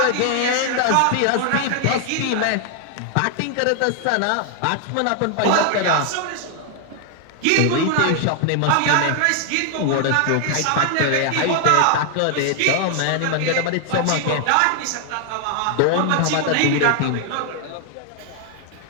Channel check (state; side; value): different; both; correlation 0.00